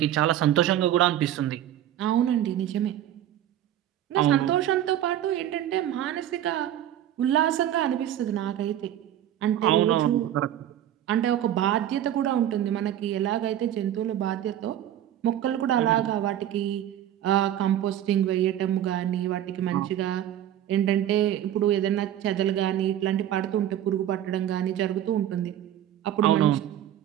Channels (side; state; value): left; quieter; 11.5 dB